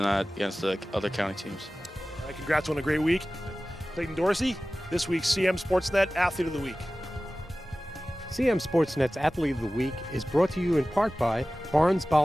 that against the other county teams. All right, congrats on a great week. Clayton Dorsey, this week's CMSportsNet Athlete of the Week. CMSportsNet's Athlete of the Week is brought to you in part by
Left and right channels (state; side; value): normal; both; correlation 0.97